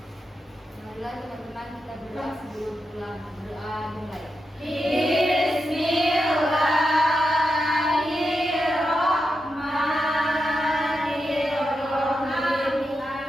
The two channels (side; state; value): both; normal; correlation 0.87